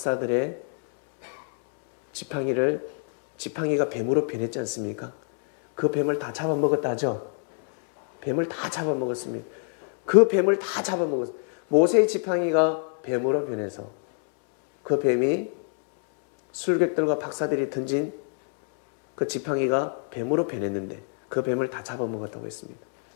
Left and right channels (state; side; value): silent; right; 56 dB below the other